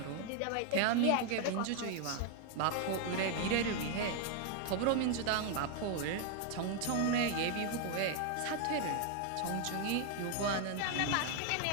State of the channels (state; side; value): different; both; correlation 0.01